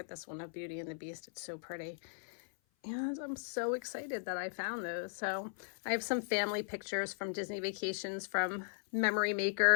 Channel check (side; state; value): right; silent; 53 dB below the other